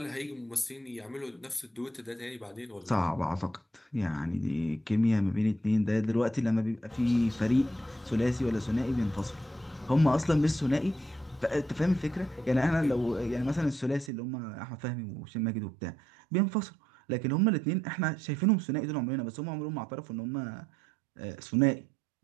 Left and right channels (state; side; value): drops out; left; at 14.1 s